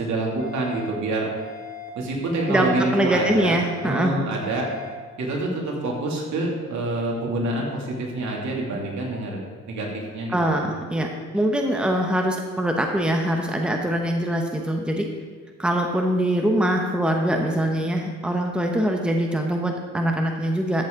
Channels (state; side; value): normal; both; correlation 0.65